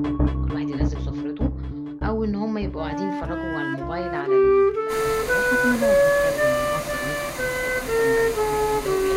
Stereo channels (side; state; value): both; identical; correlation 1.00